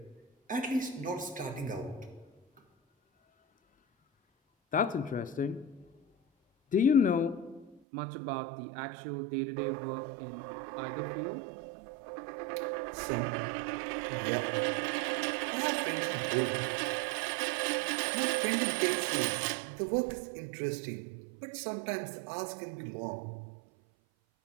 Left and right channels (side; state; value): left; drops out; at 7.8 s